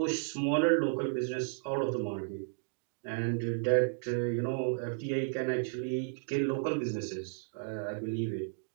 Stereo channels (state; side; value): silent; left; digital silence